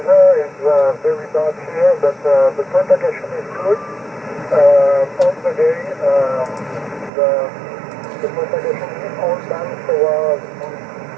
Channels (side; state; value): left; drops out; at 7.1 s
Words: is very bad here, but the propagation is good. On the day, the propagation is all done, so